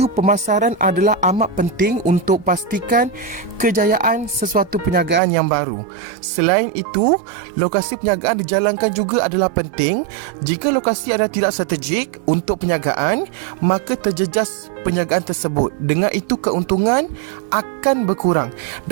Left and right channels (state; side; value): drops out; left; at 5.2 s